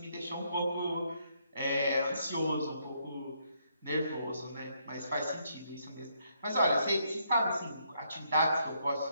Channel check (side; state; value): both; inverted; correlation -0.74